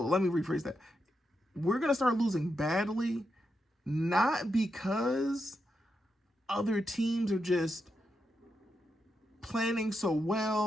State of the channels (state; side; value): normal; both; correlation 0.85